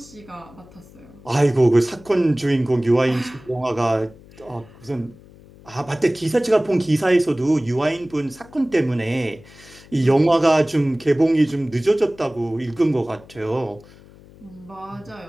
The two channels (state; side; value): noise; left; hum, 23 dB below the sound